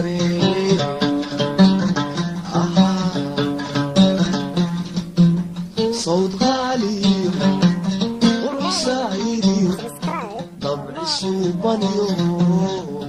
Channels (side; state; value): both; identical; correlation 1.00